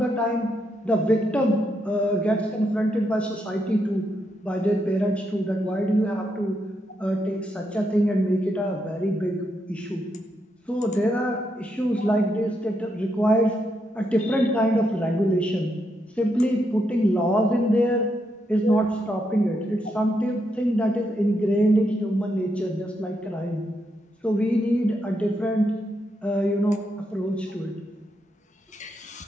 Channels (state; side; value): normal; both; correlation 0.80